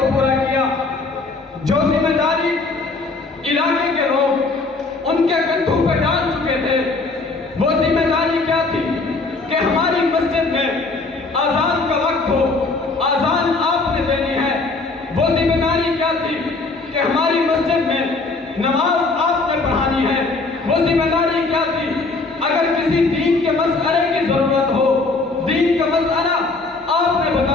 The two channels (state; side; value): quieter; right; 3.6 dB